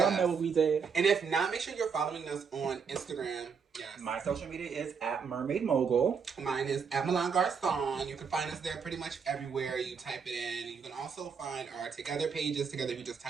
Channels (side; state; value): left; quieter; 6.0 dB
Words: Yes. know what we did. And if not, make sure you're following us on Instagram. Yes. My social media is at Mermaid Mogul. Mine is at Milan Garcon. You can find us there pretty much everywhere. You type it in. You can also find our Together pages. Together, you just